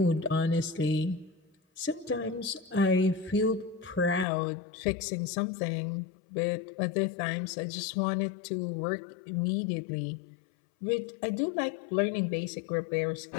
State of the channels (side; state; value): right; drops out; at 4.2 s